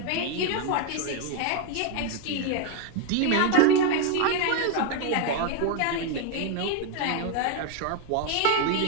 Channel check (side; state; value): both; different; correlation 0.01